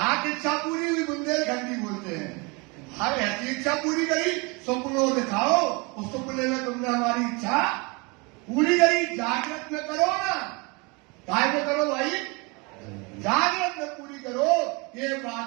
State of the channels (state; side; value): quieter; left; 28.7 dB